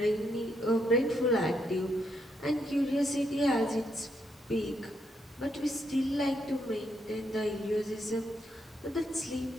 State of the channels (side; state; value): both; normal; correlation 0.77